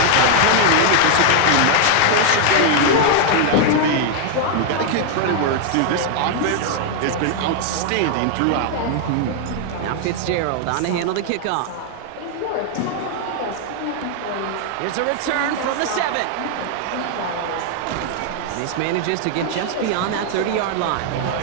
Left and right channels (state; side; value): different; both; correlation 0.00